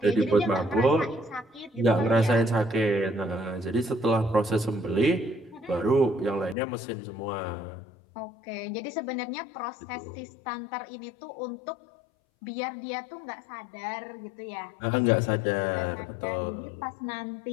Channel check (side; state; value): right; drops out; at 6.6 s